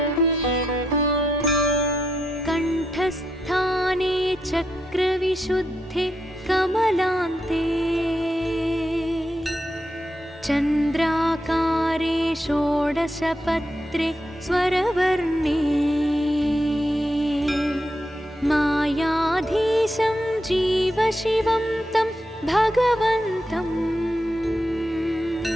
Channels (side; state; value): both; normal; correlation 0.83